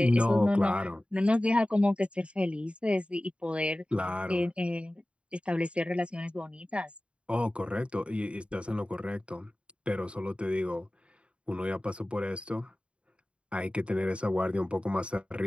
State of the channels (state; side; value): late; left; 0.058 ms